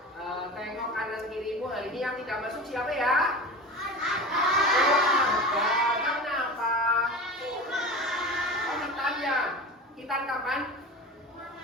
tengok kanan kirimu. Hari ini yang tidak masuk siapa ya? Kenapa? Oh, Tanya. Kita kapan?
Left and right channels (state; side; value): normal; both; correlation 0.31